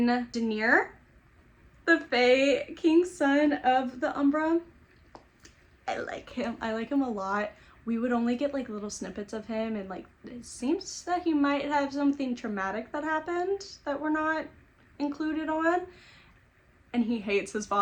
Daenerys, the Fae King's son of the Umbra, I like him. I like him a lot. We would only get like little snippets of him, and like it seems that he might have something traumatic that happened that we're not included on. And he hates his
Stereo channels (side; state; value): both; identical; correlation 1.00